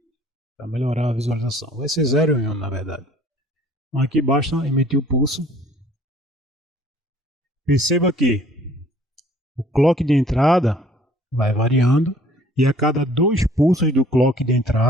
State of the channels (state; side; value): normal; both; correlation 0.56